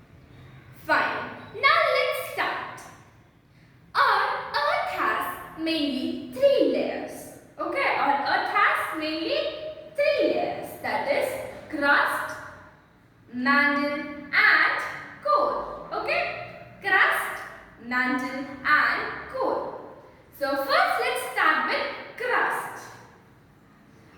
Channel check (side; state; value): both; identical; correlation 1.00